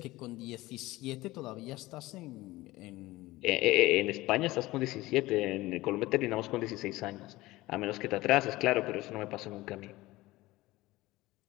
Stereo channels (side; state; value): right; quieter; 18.8 dB